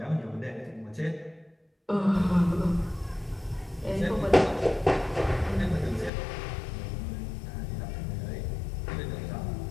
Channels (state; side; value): drops out; right; at 6.1 s